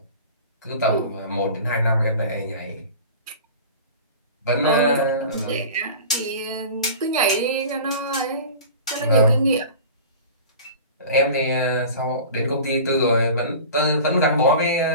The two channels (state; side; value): inverted; both; correlation -0.38